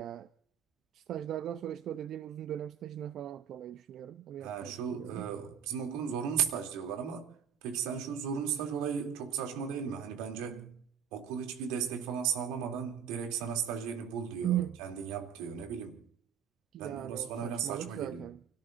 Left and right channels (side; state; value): left; quieter; 8.0 dB